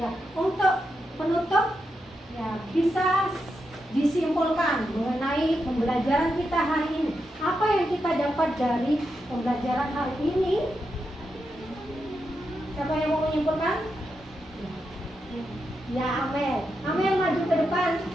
Ya, untuk penutup ya bisa disimpulkan mengenai pembelajaran kita hari ini. Apa yang kita dapat dari pembelajaran hari ini? Siapa yang mau menyimpulkan? Ya, Amel. Amel maju ke depan.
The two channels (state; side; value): normal; both; correlation 0.85